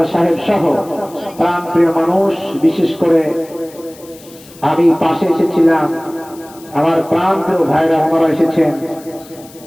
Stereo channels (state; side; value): noise; left; hiss, 22 dB below the sound